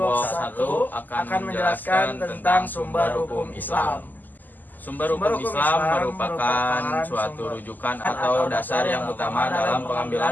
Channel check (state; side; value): late; right; 0.085 ms